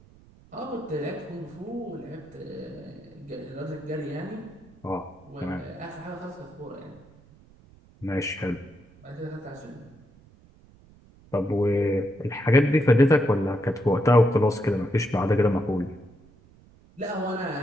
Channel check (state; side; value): noise; right; rumble, 26 dB below the sound